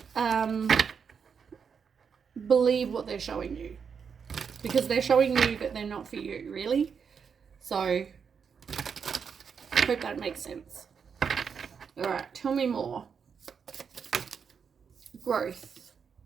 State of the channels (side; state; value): left; quieter; 6.5 dB